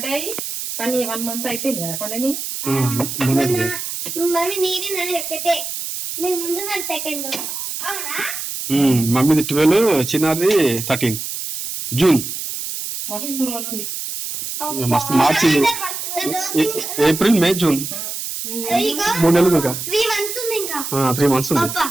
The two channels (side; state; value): right; noise; hiss, 6 dB below the sound